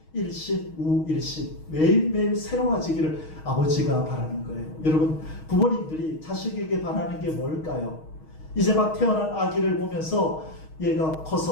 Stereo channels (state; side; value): late; right; 6.4 ms